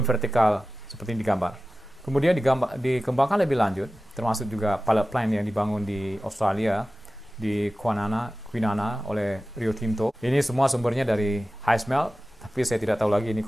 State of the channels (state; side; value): normal; both; correlation 0.96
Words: vertikal seperti ini digambar. Kemudian dikembangkan lebih lanjut, termasuk juga pilot plant yang dibangun di Australia, di Kwinana oleh Rio Tinto. Ini semua sumbernya dari high smelt, tapi saya tidak tahu lagi ini